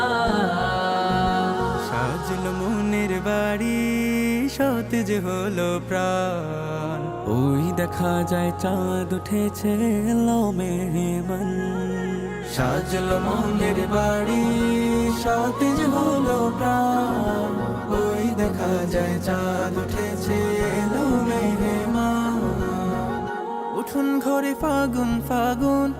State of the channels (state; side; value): identical; both; correlation 1.00